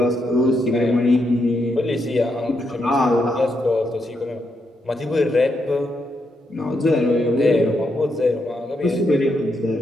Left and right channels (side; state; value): both; normal; correlation 0.80